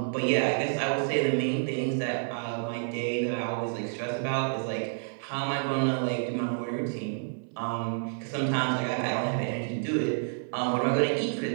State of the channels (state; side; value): silent; left; 58 dB below the other